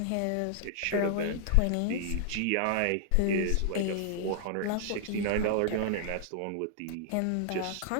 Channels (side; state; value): both; different; correlation 0.00